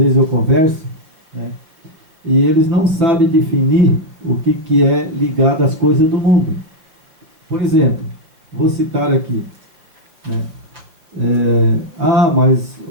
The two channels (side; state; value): left; late; 6.1 ms